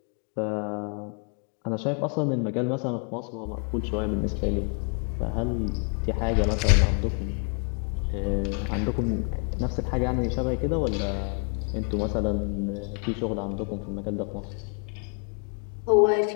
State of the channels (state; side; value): quieter; right; 39.6 dB